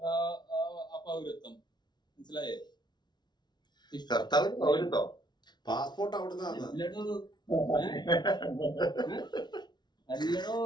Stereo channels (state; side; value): late; right; 0.20 ms